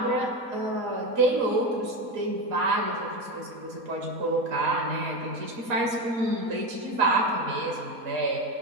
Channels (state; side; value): late; left; 4.2 ms